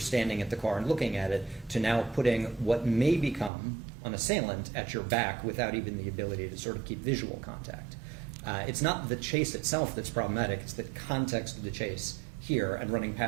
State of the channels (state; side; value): drops out; left; at 3.5 s